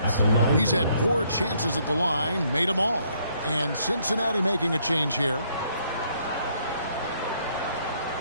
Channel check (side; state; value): both; inverted; correlation -0.69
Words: He's had 4 chances at the line, made them all. And Cincinnati making a change here.